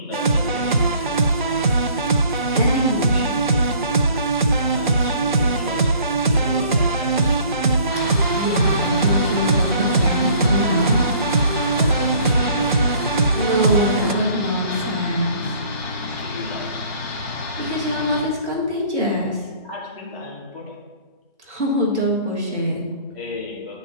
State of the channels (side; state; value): both; inverted; correlation -0.54